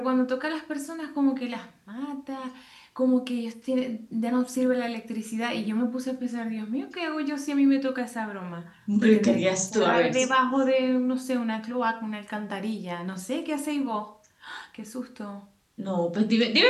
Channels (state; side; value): identical; both; correlation 1.00